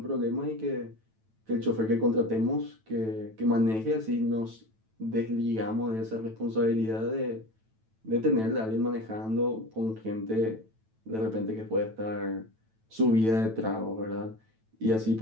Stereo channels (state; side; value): late; left; 9.1 ms